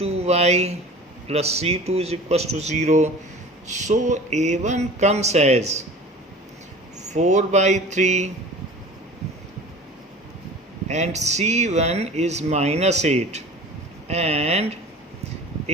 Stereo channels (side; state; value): both; normal; correlation 0.41